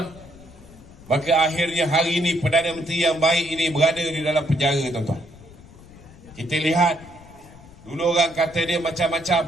maka akhirnya hari ini Perdana Menteri yang baik ini berada di dalam penjara tuan-tuan. Kita lihat, dulu orang kata dia macam-macam,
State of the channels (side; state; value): left; noise; rumble, 21 dB below the sound